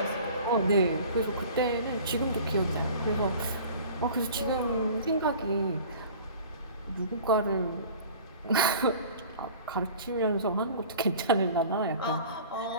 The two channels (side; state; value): both; inverted; correlation -0.44